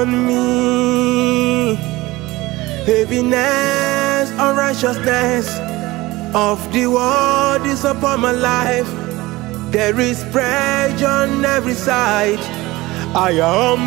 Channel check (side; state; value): left; quieter; 19.8 dB